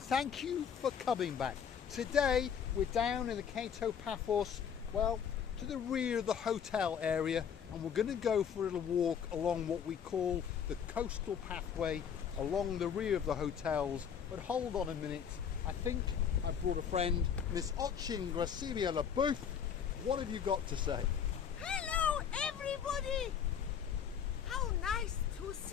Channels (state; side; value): quieter; right; 7.8 dB